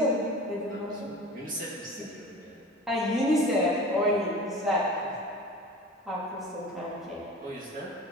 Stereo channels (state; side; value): normal; both; correlation 0.37